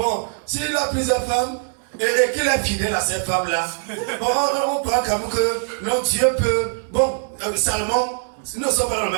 s'il a plusieurs femmes, et qu'il est fidèle à cette femme-là, bon, on croit quand même que non, Dieu peut. Bon, Salomon, nous ne sommes pas dans le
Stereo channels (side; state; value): left; silent; digital silence